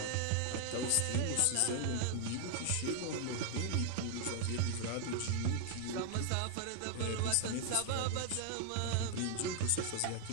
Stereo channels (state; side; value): different; both; correlation 0.00